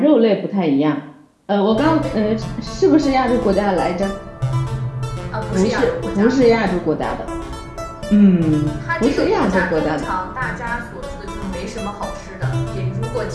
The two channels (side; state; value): both; identical; correlation 1.00